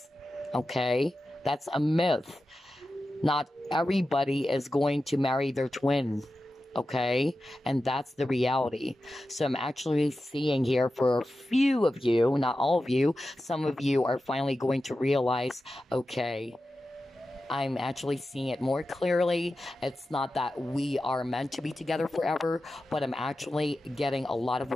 Okay? That's a myth. Not everybody is going to marry their twin. Okay? And that's the reality. So I'm actually seeing here for a few of you, not all of you, some of you are finally going to realize, okay, I'm actually seeing it more clearly. It's not that we are meant to be together forever, but I'm actually getting a lot of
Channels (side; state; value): both; normal; correlation 0.92